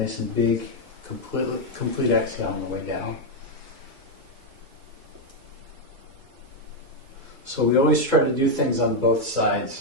and big. Complete exhale on the way down. So we always try to do things on both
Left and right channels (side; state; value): left; late; 2.2 ms